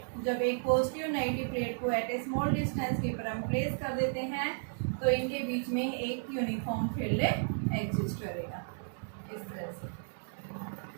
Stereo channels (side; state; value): left; silent; digital silence